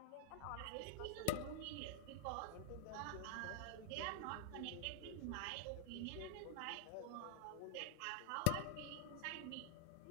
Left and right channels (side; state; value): both; different; correlation 0.00